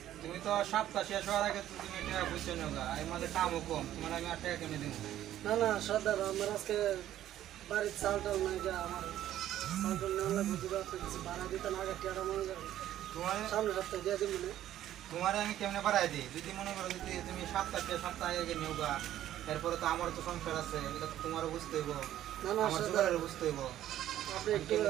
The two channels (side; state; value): left; quieter; 12.4 dB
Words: তুমি তো সপ্তাহ শেষ হওয়ার আগে তুমি টাকা বুঝছো না, এই মাঝে কামও কম, তোমার আমি 8 টাকা কিনে দেবো। না না সর্দার, আমার আজকে বাড়ির চাল টাল নাই, যা আমার চাল টাল নেওয়া লাগবে। যদি আপনি কিছু ভাড়া দিতেন আগে টিয়াটা মনে করেন তোমার সামনে সপ্তাহে দিয়ে দিন। মানে তোমার আমি কেমনে বাড়াই দিই? যদি মনে করো যদি তুমি সপ্তাহ আগে নেওগা, এরপরে তো আমার তো সংসার আছে, এটা তো তোমারও বুঝতে হইব, না না আমার সর্দার, জোগাড়ের বুঝতে হইব। আপনি একটু